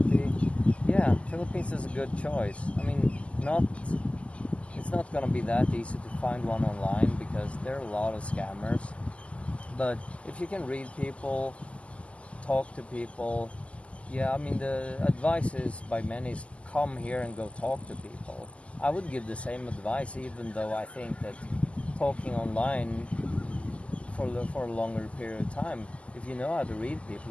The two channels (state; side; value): late; right; 0.059 ms